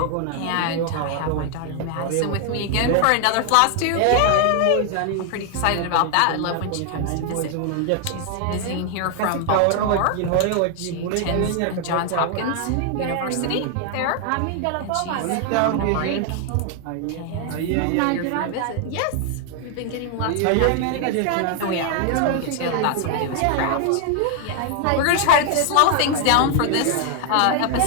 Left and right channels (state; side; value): different; both; correlation 0.00